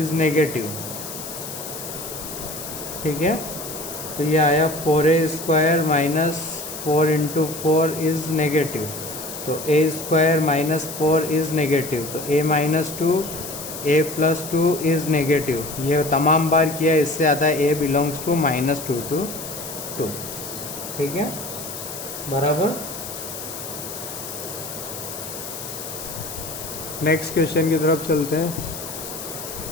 negative, ठीक है। तो ये आया 4a square minus 4 into 4 is negative, तो a square minus 4 is negative, तो a minus 2 a plus 2 is negative. ये तमाम बार किया, इससे आता है a belongs to minus 2 to 2, ठीक है, बराबर। नेक्स्ट क्वेश्चन की तरफ चलते हैं।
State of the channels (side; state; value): left; noise; hiss, 9 dB below the sound